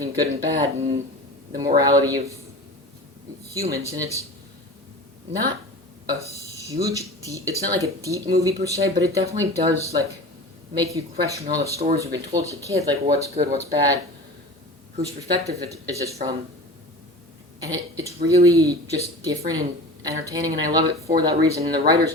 good and bad and the morality of humans. And it's not a huge, it's not like a deep movie per se, but it definitely does, like, make you question all the stories you've been told as a kid, like, what's good, what's bad, whose perspective is this from. And it's really just different and entertaining, and I love it for that reason. And the writers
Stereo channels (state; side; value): normal; both; correlation 0.35